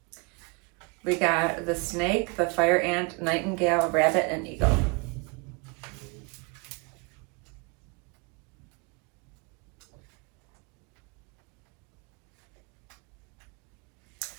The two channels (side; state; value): left; quieter; 30.1 dB